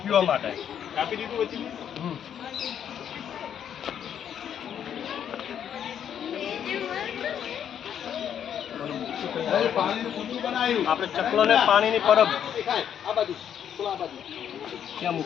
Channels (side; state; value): right; quieter; 9.1 dB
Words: પીવા માટે. કાપી દીધું પછી પાણીનું કુંડું બનાવ્યું આપણે ચકલાને પાણીની પરબ આ બાજુ ક્યાં